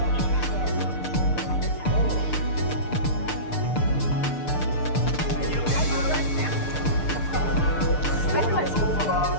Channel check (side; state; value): right; late; 6.7 ms